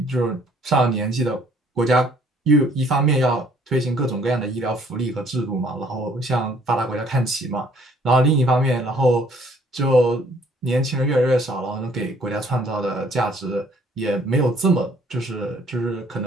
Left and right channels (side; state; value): both; normal; correlation 0.61